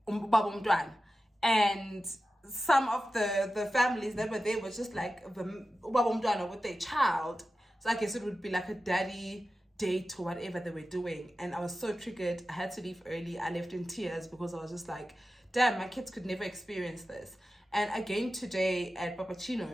and some of the families that were there was just like the with their child. So I guess it would be like a daddy date or whatever they were doing. And I was so triggered. I had to leave early. I left in tears because I was just like, damn, my kids could never experience this. And again today at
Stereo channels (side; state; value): both; normal; correlation 0.93